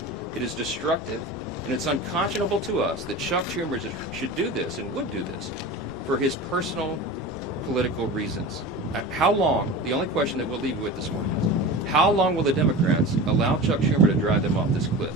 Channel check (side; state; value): both; normal; correlation 0.31